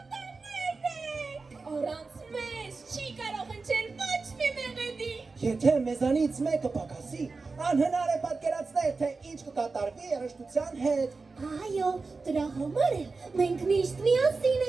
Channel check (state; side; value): quieter; left; 4.1 dB